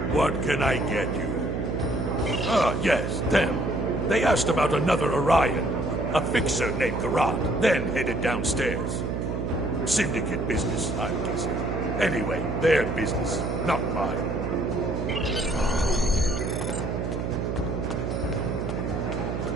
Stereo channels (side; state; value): right; noise; hum, 2 dB below the sound